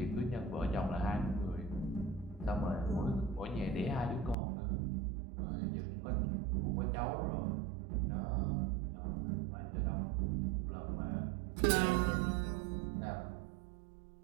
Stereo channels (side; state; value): left; drops out; at 4.4 s